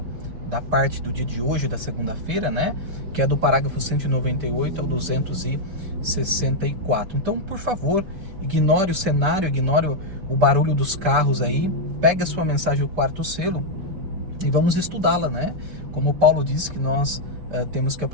da parte do dia de hoje, da segunda-feira, né? Que é do parágrafo 198 ao 264. Então, por favor, ignore o cenário, ignore o barulho dos carros aí, pegue a sua mensagem, o quarto selo, e vamos estudá-la, né? Como Paulo disse que nós temos que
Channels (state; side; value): late; left; 5.1 ms